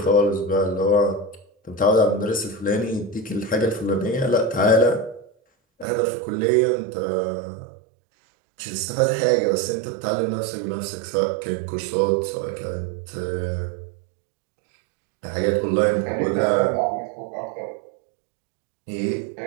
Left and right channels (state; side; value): drops out; left; at 5.9 s